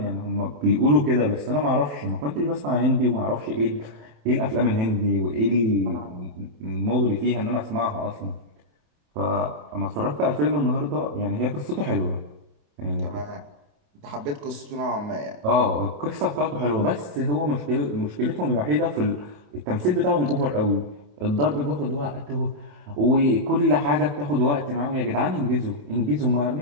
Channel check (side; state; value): left; late; 27 ms